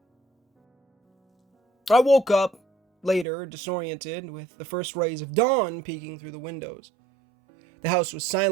I woke up later, disoriented, with the first rays of dawn peeking through the windows. The house was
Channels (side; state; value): left; drops out; at 3.2 s